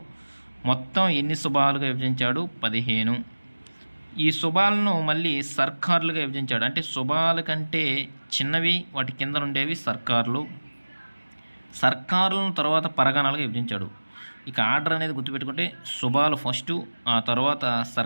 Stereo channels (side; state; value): both; inverted; correlation -1.00